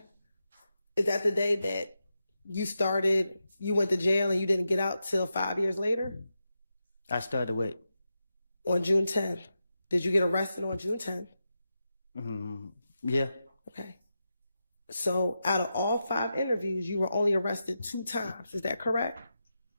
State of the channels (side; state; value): both; inverted; correlation -0.89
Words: Is that the day that you went to jail and you didn't get out till 5 years later? I started what? On June 10th. Did you get arrested on June 10th? Mm-hmm. Yeah. Okay. So out of all 5 interviews, you were only arrested 2 times. Is that correct?